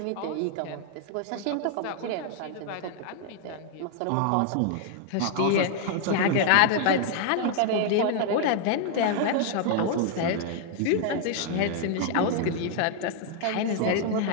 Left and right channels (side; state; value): both; different; correlation 0.00